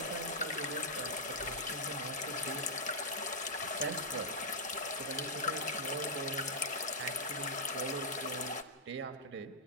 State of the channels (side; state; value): both; normal; correlation -0.08